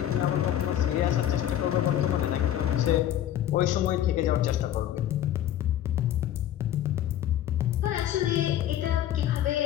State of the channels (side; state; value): right; quieter; 11.7 dB